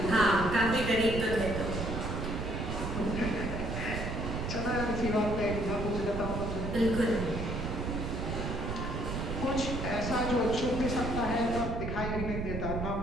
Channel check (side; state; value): right; noise; rumble, 3 dB below the sound